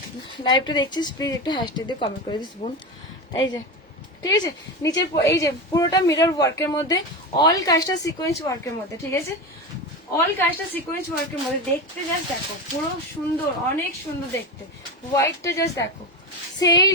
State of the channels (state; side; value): normal; both; correlation 0.20